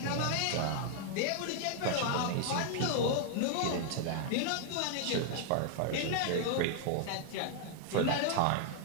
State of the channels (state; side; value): different; both; correlation 0.00